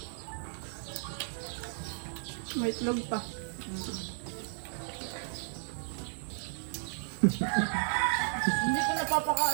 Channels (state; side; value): silent; left; digital silence